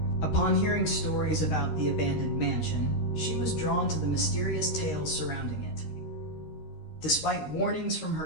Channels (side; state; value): right; late; 13 ms